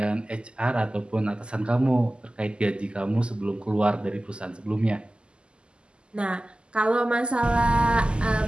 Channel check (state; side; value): late; left; 0.050 ms